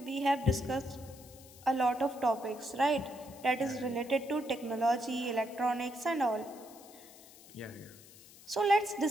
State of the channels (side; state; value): left; noise; hiss, 21 dB below the sound